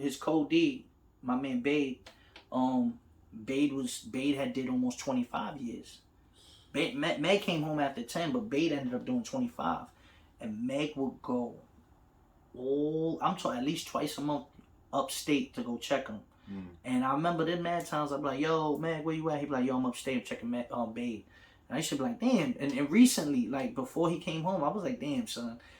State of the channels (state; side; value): identical; both; correlation 1.00